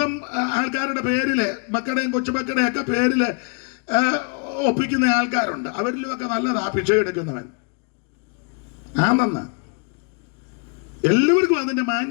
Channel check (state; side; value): quieter; right; 38.4 dB